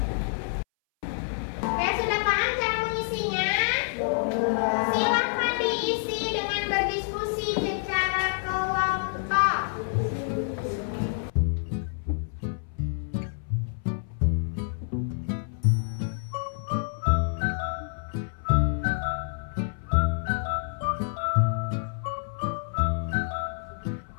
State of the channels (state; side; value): silent; right; 60 dB below the other